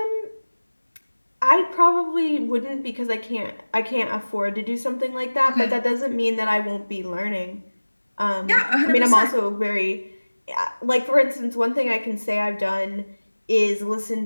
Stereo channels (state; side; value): inverted; both; correlation -1.00